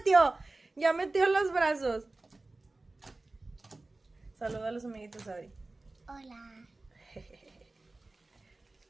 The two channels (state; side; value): quieter; left; 3.1 dB